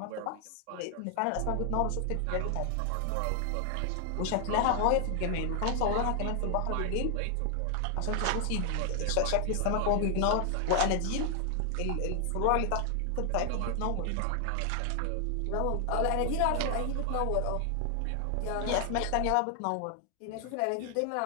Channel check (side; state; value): both; different; correlation 0.00